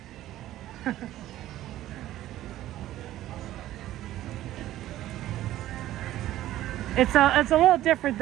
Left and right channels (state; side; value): quieter; left; 14.1 dB